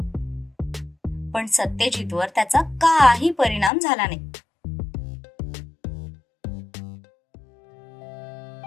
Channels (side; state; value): right; drops out; at 3.7 s